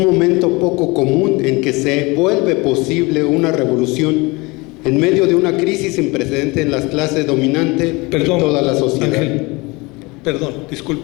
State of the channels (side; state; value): right; quieter; 24.9 dB